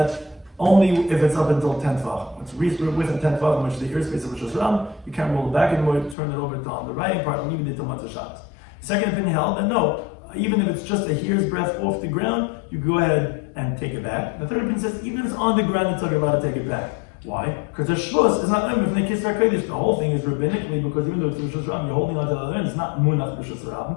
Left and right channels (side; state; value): right; drops out; at 6.2 s